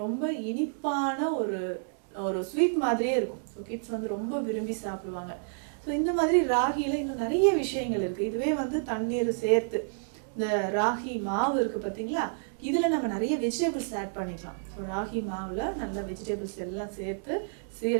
ரொம்ப இனிப்பான ஒரு ஸ்வீட் மாதிரியே இருக்கும். ஸோ கிட்ஸ் ரொம்ப விரும்பி சாப்பிடுவாங்க. ஸோ இந்த மாதிரி ராகியில் இன்னும் நிறைய விஷயங்கள் இருக்குது. இதுவே தண்ணீர் சேர்த்து இந்த ராகி மாவு இருக்குது பார்த்தீங்களா, இதில் நம்ம நிறைய வெஜிடபிள்ஸ் ஆட் பண்ணிக்கலாம். ஸோ ராகி மாவில் நல்ல வெஜிடபிள்ஸ் எல்லாம் சேர்த்து,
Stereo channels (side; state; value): left; silent; digital silence